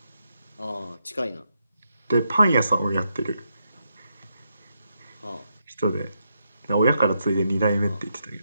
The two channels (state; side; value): inverted; both; correlation -0.81